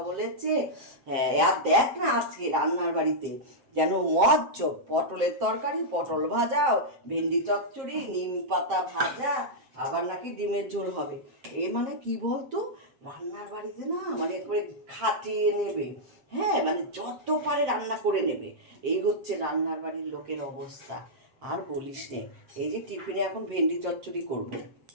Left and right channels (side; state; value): left; late; 7.5 ms